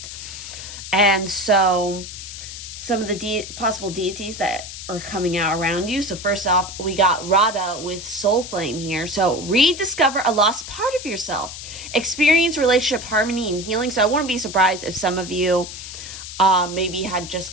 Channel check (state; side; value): noise; left; hiss, 11 dB below the sound